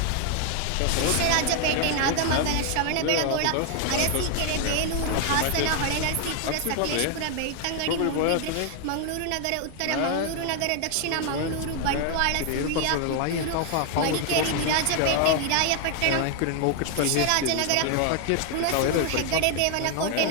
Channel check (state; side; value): different; both; correlation 0.00